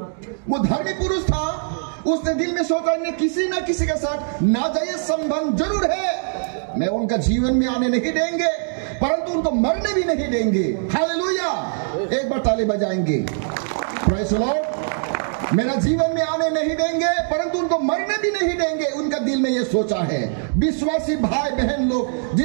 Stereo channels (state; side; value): silent; left; digital silence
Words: वो धर्मी पुरुष था, उसने दिल में सोचा इन्हें किसी ना किसी के साथ नाजायज संबंध जरूर है, मैं उनका जीवन में आने नहीं देंगे परंतु उनको मरने भी नहीं देंगे। हालेलुया। एक बार ताली बजाएंगे। Praise the Lord. मेरा जीवन में आने नहीं देंगे परंतु उनको मरने भी नहीं देंगे, उनका दिल में ये सोचा है। विश्वासी भाई बहन लोग